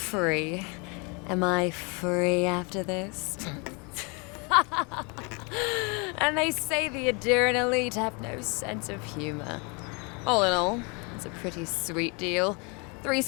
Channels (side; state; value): right; quieter; 32.0 dB